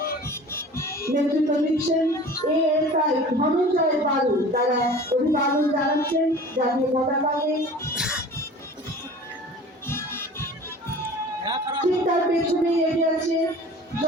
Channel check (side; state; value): both; normal; correlation 0.42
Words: নেতৃত্ব দিচ্ছেন এএসআই ধনঞ্জয় বালু, তারা অভিবাদন জানাচ্ছেন জাতীয় পতাকাকে। ঠিক তার পেছনে এগিয়ে আছে